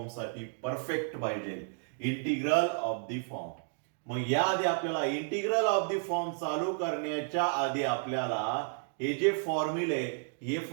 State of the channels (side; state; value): left; silent; digital silence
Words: साठी परफेक्ट पाहिजे. Integral of the form. मग याआधी आपल्याला इंटिग्रल ऑफ द फॉर्म चालू करण्याच्या आधी आपल्याला हे जे फॉर्म्युले हे